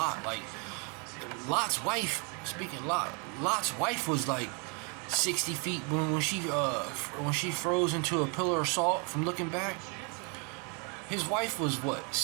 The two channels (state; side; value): quieter; left; 35.4 dB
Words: Like, Lot's wife, Lot's wife was like 60 feet when she froze into a pillar of salt from looking back. His wife was what,